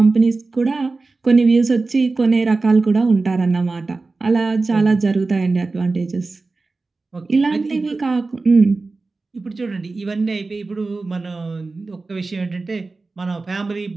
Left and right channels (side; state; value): left; quieter; 3.7 dB